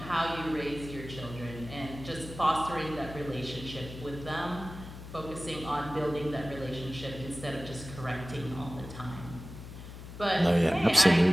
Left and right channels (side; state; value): left; noise; hum, 13 dB below the sound